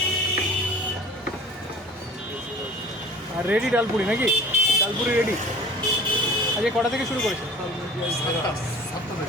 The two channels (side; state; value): both; normal; correlation 0.44